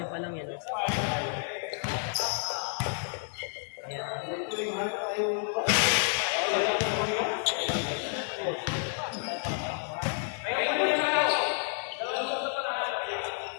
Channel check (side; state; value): right; silent; 58 dB below the other